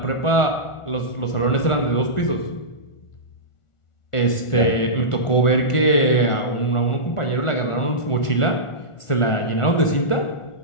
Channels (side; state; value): right; late; 1.4 ms